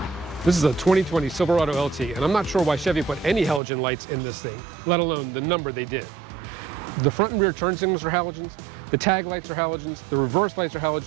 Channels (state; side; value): drops out; left; at 3.6 s